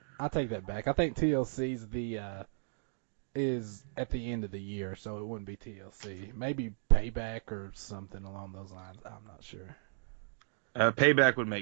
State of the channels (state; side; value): silent; left; digital silence